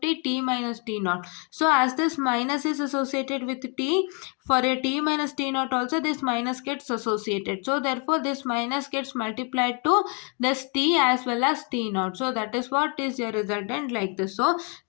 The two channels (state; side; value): quieter; right; 35.7 dB